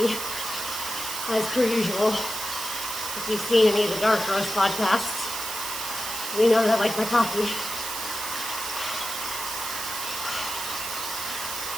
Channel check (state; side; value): noise; right; hiss, 5 dB below the sound